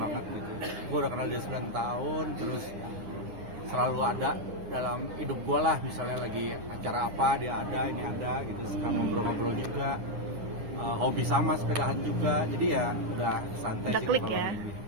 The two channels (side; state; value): left; late; 9.8 ms